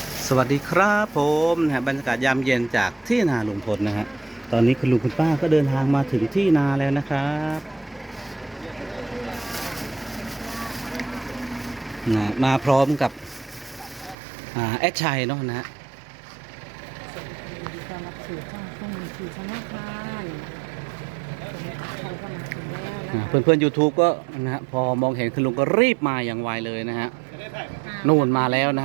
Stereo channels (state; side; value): drops out; left; at 14.2 s